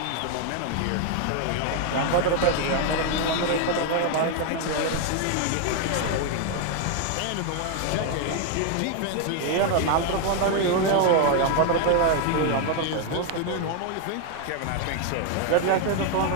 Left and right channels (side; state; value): both; different; correlation 0.01